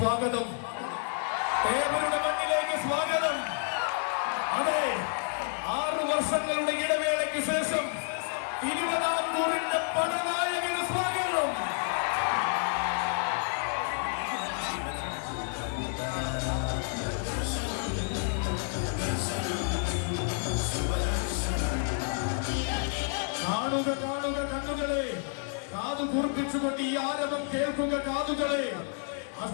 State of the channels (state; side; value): silent; right; 58 dB below the other